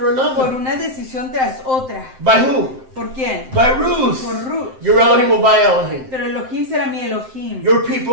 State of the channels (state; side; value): late; left; 7.7 ms